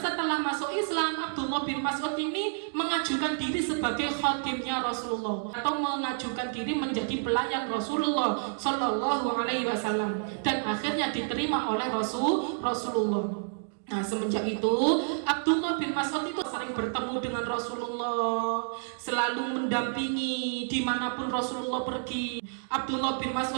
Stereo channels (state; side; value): silent; left; digital silence